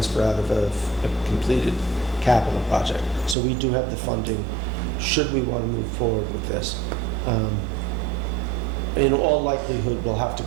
out of a completed capital project. So we do have the funding should we want to move forward with this. In all likelihood, we'll have to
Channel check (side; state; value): left; drops out; at 3.4 s